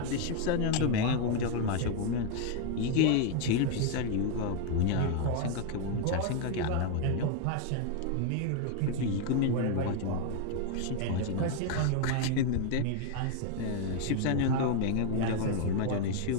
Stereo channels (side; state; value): both; different; correlation 0.01